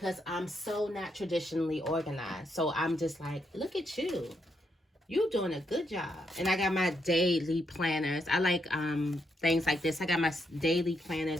I'm so not traditionally organized. So I'm just like, look at you. You doing a good job. And I got my daily planners. I like things like this. I got my daily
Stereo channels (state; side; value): normal; both; correlation 0.79